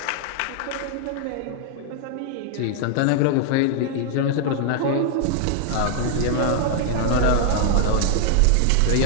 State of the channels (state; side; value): different; both; correlation -0.01